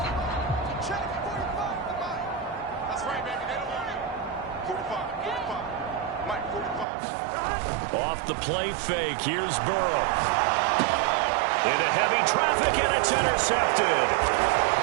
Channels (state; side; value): drops out; left; at 6.9 s